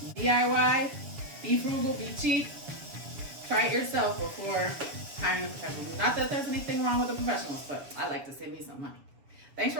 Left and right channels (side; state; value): left; late; 7.2 ms